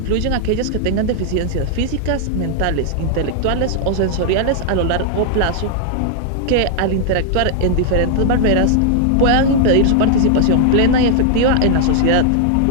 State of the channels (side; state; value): both; different; correlation 0.00